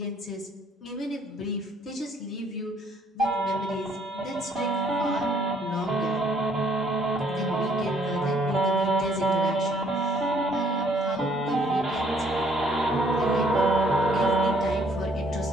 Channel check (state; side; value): normal; both; correlation 0.64